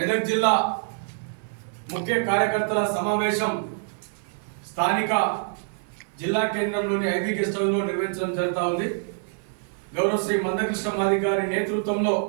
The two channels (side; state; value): left; silent; digital silence